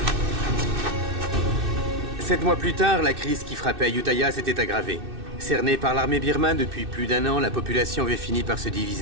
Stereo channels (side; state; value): left; late; 2.6 ms